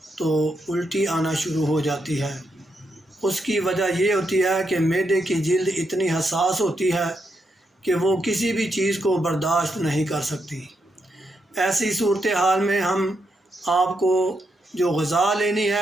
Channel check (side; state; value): both; normal; correlation 0.81